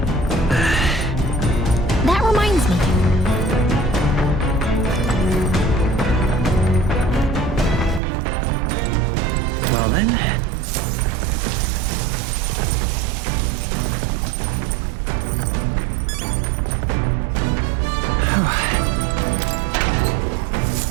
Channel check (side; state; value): left; drops out; at 8.0 s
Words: That reminds me. Well then.